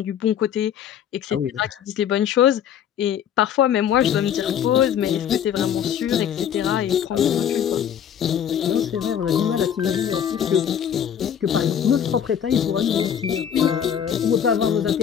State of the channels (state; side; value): quieter; right; 9.0 dB